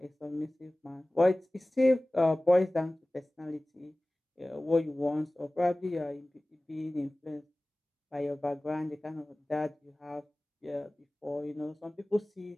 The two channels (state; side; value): normal; both; correlation 0.98